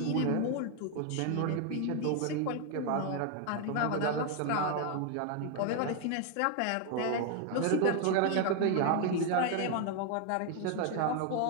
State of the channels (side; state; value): both; different; correlation 0.01